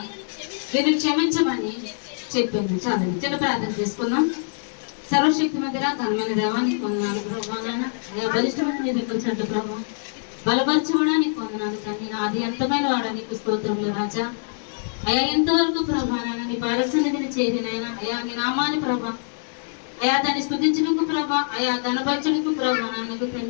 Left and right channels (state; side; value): silent; right; digital silence